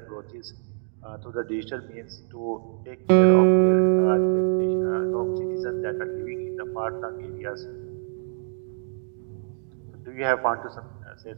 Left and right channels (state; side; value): silent; left; digital silence